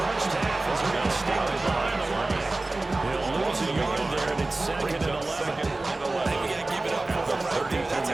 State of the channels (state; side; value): quieter; left; 3.0 dB